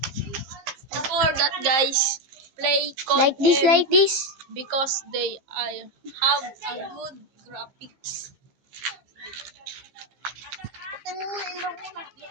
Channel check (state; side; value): late; left; 15 ms